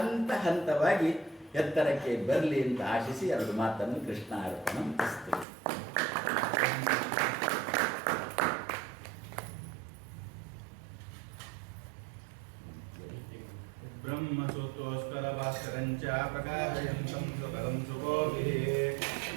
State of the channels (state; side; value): drops out; left; at 5.5 s